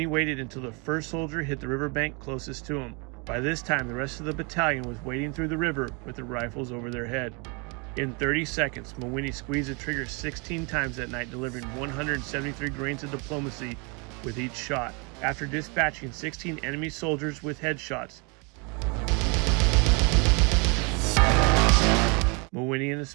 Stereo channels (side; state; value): left; quieter; 32.2 dB